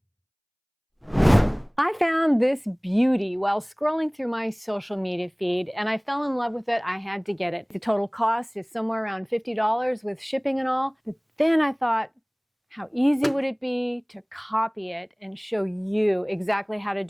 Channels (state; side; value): identical; both; correlation 1.00